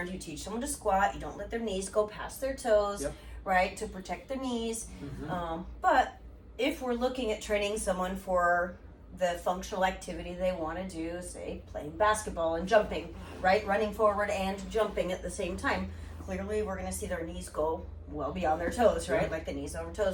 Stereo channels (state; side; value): identical; both; correlation 1.00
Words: you teach someone to squat, you don't let their knees go past their toes, right? To protect their knees. But if we're looking at training someone for the functional activity they want to do, say playing basketball and jumping, right? Running forward and jumping at the same time, clearly we're going to see their knees go well beyond their toes, right? Like the knees over